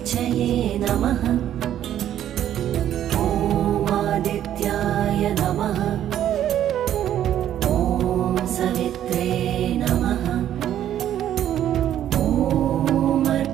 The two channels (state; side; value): quieter; left; 11.1 dB